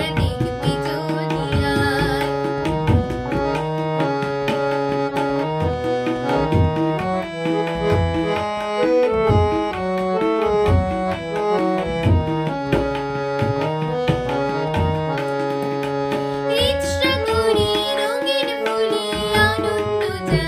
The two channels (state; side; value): identical; both; correlation 1.00